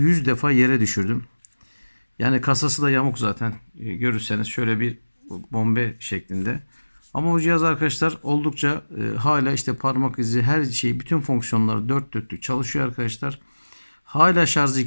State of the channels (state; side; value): inverted; both; correlation -1.00